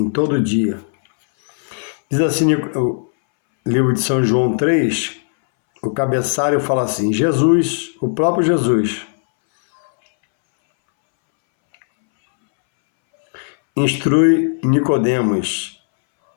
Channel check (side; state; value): right; silent; 67 dB below the other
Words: todo dia. Diz assim o livro de São João 3, o cabeçalho fala assim: Jesus, o próprio Jesus, instrui Nicodemos